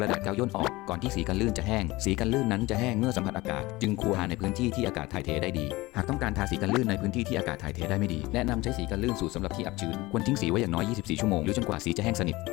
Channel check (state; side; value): quieter; right; 20.5 dB